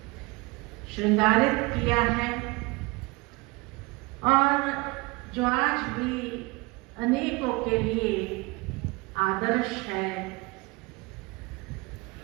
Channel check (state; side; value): quieter; left; 25.7 dB